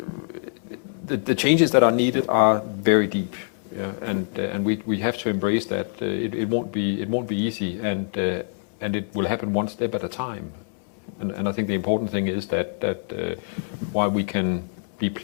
the changes that are needed are very deep, yeah? And we have to embrace that. It won't be easy, and it will happen one step at a time. And I think the important thing is that while we can be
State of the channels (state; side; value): silent; right; 62 dB below the other